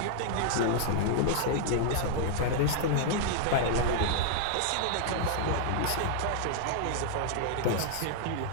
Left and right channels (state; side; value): different; both; correlation -0.01